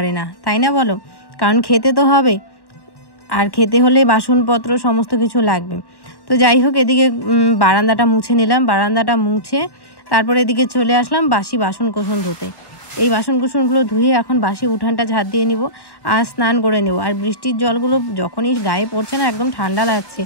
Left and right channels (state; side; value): late; right; 1.1 ms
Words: না, তাই না বলো? কারণ খেতে তো হবে, আর খেতে হলে বাসনপত্র সমস্ত কিছু লাগবে। তো যাই হোক, এদিকে বারান্দাটা মুছে নিলাম, বারান্দাটা মুছে তারপরে এদিকে চলে আসলাম বাসি বাসন কোসন ধুতে। এই বাসন কুসনগুলো ধুয়ে এখন বাসি উঠানটা ঝাড় দিয়ে নিব আর স্নান করে নেব। আর বৃষ্টির জলগুলো যখনই গায়ে পড়ছে না, একদম ঠান্ডা লাগছে,